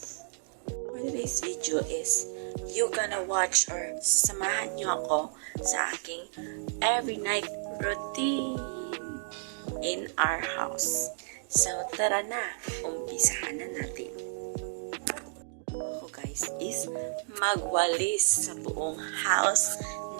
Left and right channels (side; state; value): left; silent; digital silence